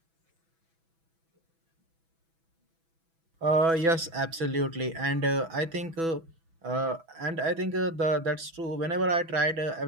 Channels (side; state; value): left; late; 6.1 ms